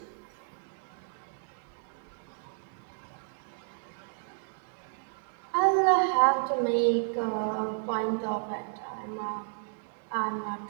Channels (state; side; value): silent; left; digital silence